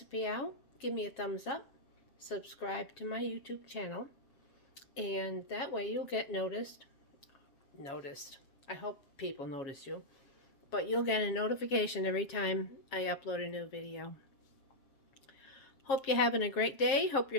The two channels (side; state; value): right; late; 7.4 ms